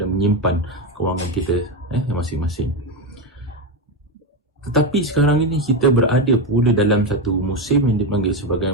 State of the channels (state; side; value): normal; both; correlation 0.12